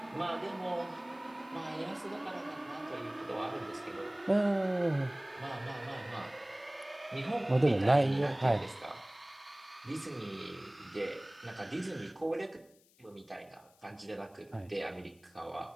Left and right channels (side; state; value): left; noise; hiss, 30 dB below the sound